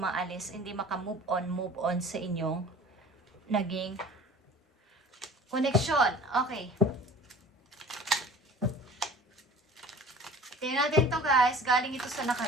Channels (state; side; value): normal; both; correlation 0.45